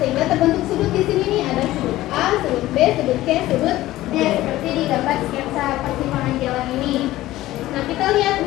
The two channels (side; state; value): right; quieter; 16.1 dB